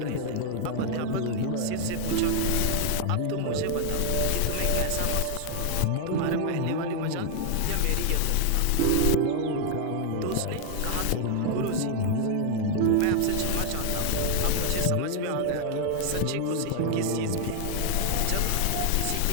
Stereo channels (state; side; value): different; both; correlation 0.00